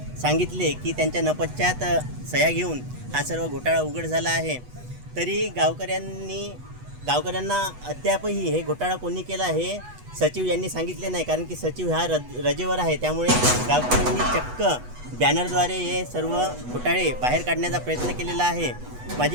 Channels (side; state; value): left; late; 8.1 ms